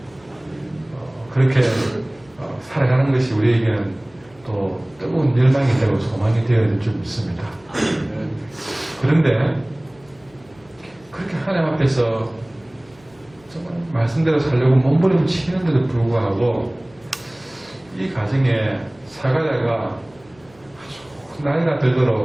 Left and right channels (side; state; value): left; noise; hum, 29 dB below the sound